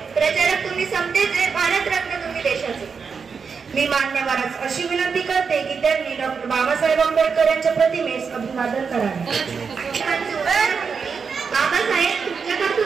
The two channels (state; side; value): quieter; left; 5.7 dB